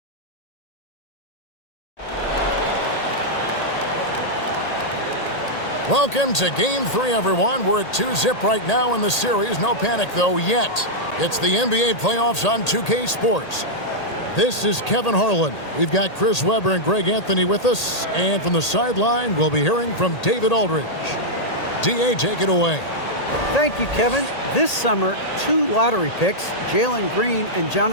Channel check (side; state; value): right; late; 1.8 ms